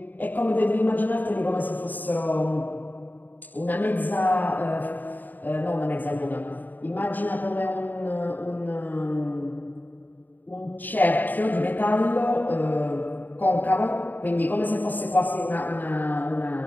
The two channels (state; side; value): late; right; 0.087 ms